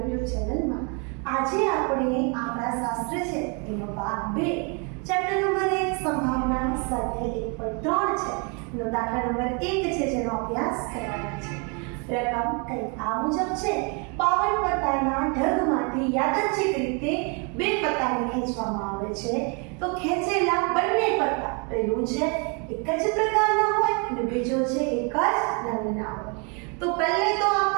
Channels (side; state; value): left; quieter; 34.7 dB